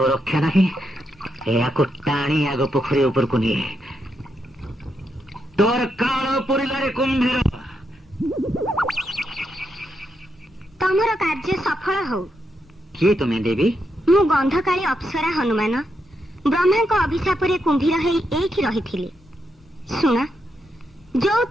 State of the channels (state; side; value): normal; both; correlation 0.82